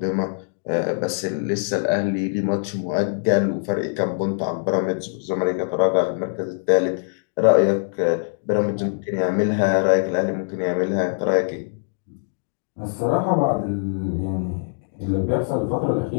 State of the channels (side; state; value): right; silent; digital silence